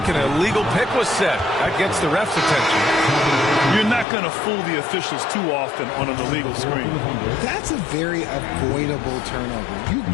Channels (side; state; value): right; drops out; at 4.0 s